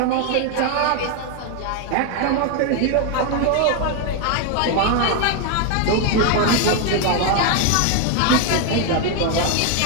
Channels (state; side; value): different; both; correlation 0.01